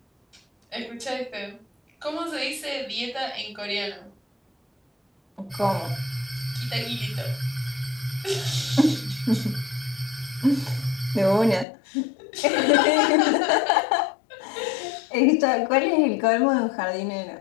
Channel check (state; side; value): drops out; right; at 11.7 s